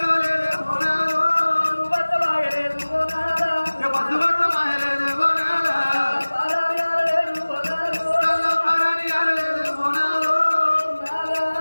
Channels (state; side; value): inverted; both; correlation -1.00